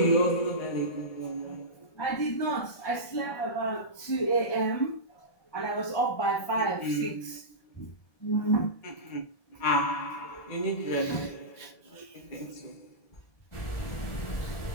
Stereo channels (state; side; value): late; right; 1.7 ms